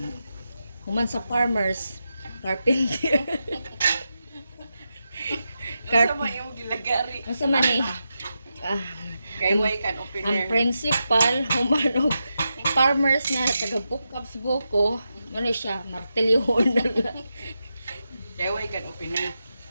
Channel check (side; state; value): both; inverted; correlation -0.88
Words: Human sa farmers, carpenter. Sama yung gilagari. Asa man eh? Ah, Kay way kan ang opener. principal, human og farmers na taga-bukap sa buko, ano siya, martilyohon na lang. Kay way kan opener.